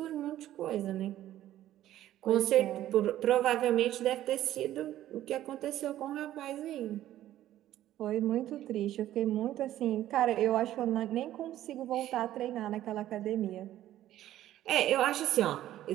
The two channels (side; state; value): left; quieter; 13.2 dB